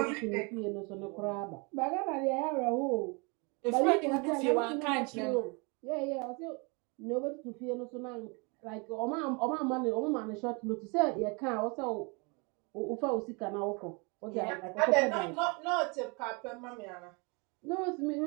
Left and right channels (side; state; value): left; quieter; 31.2 dB